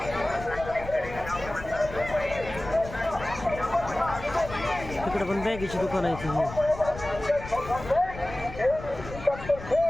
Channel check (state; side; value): noise; left; rumble, 12 dB below the sound